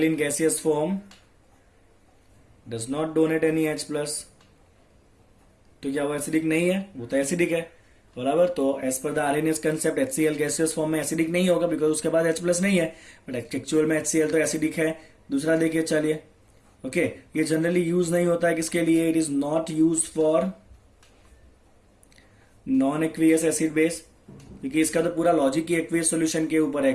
in gaseous form does not donate any H+, तो क्या वो एसिडिक नहीं है, वो तो एसिडिक है, बराबर। तो as per the Arrhenius concept HCl gaseous form में एसिडिक नहीं होगा, बिकॉज उसके बाद H+ नहीं है, बट एक्चुअल में HCl तो एसिडिक है। दूसरा देखिए, चलिए ओके, ये जनरली यूज नहीं होता है किसके लिए, it is not use for non aqueous acid base, क्योंकि इसका तो पूरा लॉजिक ही एक्वियस सॉल्यूशन के ऊपर है।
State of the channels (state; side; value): identical; both; correlation 1.00